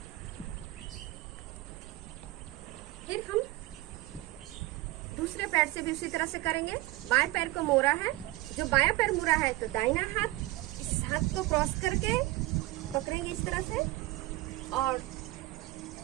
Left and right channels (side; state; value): left; quieter; 18.5 dB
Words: फिर हम दूसरे पैर से भी उसी तरह से करेंगे। बाएं पैर को मोड़ा है, जो बायां पैर मुड़ा है तो दाहिना हाथ इस हाथ को क्रॉस करके पकड़ेंगे इस तरह से, और